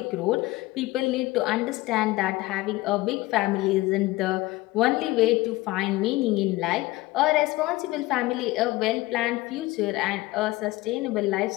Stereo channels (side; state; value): right; quieter; 19.5 dB